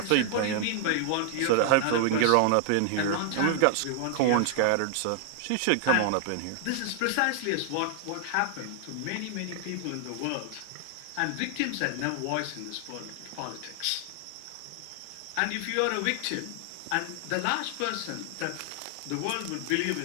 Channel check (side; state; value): both; different; correlation 0.00